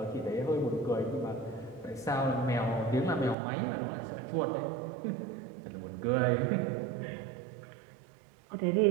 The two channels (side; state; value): left; drops out; at 3.4 s